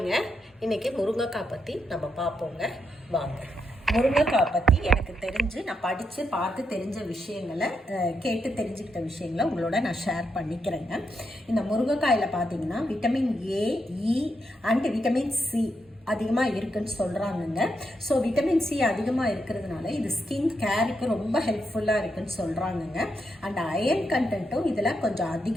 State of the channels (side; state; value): both; normal; correlation 0.82